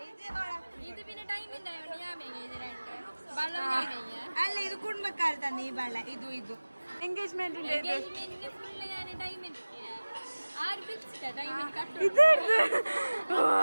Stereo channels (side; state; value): both; inverted; correlation -1.00